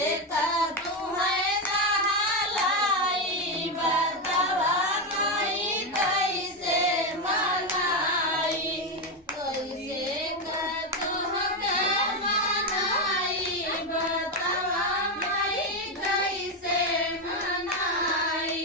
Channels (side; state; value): both; normal; correlation 0.09